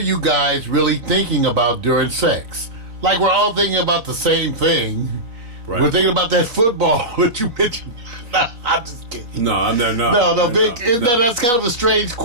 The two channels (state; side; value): late; left; 4.0 ms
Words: guys really thinking about during sex?" Like we're all thinking about the same thing. Right. We're thinking about that football that you mentioned. No, I'm just kidding. No, I'm not. No, Vic. That's kind of a strange